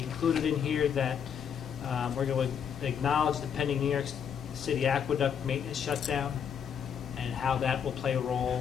included in here that we're going to acknowledge the pending New York City aqueduct maintenance shutdown and how that will play a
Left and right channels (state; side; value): quieter; right; 7.8 dB